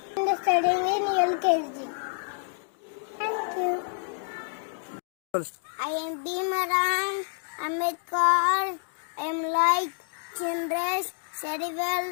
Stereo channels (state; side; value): silent; right; digital silence